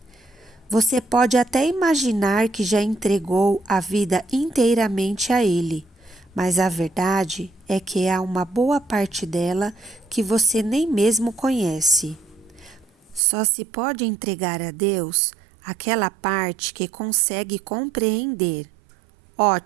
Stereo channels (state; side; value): drops out; left; at 13.2 s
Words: Você pode até imaginar que já entregou a vida inteiramente a Ele, mas a verdade é que há uma boa parte dela que você nem mesmo conhece. Só se pode entregar a Deus aquela parte que consegue compreender.